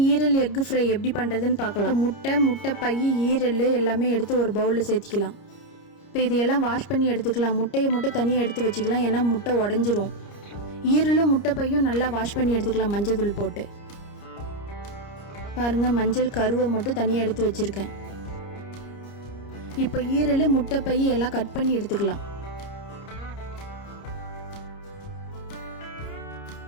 ஈரல் egg fry எப்படி பண்ணுறதுன்னு பார்க்கலாம். முட்டை பை ஈரல் எல்லாமே எடுத்து ஒரு பவுலில் சேர்த்திக்கலாம். இப்போ இதையெல்லாம் வாஷ் பண்ணி எடுத்துக்கலாம். முட்டையை மட்டும் தனியாக எடுத்து வச்சுக்கலாம், ஏன்னா முட்டை உடஞ்சிரும். ஈரலும் முட்டை பையும் நல்லா வாஷ் பண்ணி எடுத்துக்கலாம் மஞ்சள் தூள் போட்டு. பாருங்கள், மஞ்சள் கருவை மட்டும் தனியாக எடுத்து வச்சுருக்கேன். இப்போ ஈரல் முட்டை பை எல்லாம் கட் பண்ணி எடுத்துக்கலாம்.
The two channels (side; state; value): right; late; 30 ms